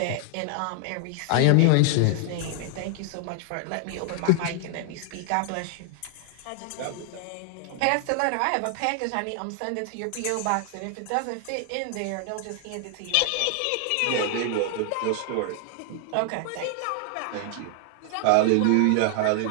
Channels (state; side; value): different; both; correlation 0.00